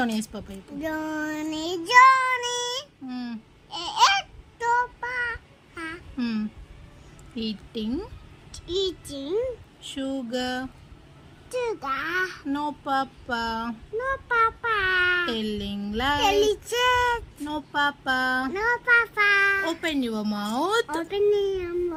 yes papa. Johnny Johnny eating eating sugar sugar no papa no papa telling lies delicious no papa no papa open your mouth open your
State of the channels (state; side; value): identical; both; correlation 1.00